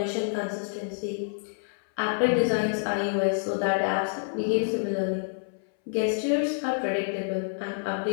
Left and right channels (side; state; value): right; silent; 59 dB below the other